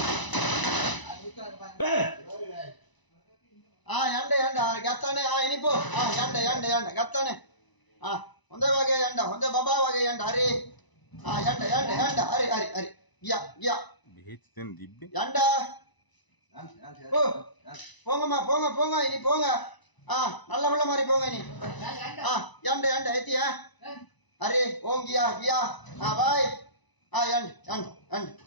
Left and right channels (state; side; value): late; right; 1.0 ms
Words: yanda gattane inipo yanda gattane honda wage yanda honda baba wage yanda hari yanda hari giya behet den dibbe yanda போங்க இனி போங்க நல்ல புள்ள மாதிரி போங்க இனி yanda எத்தியா அரே ஓம் கியா பாய்